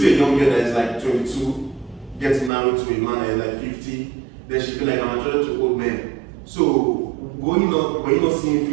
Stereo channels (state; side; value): drops out; left; at 2.5 s